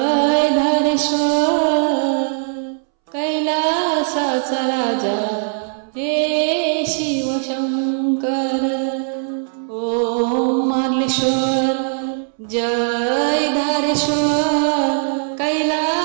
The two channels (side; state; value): left; silent; 66 dB below the other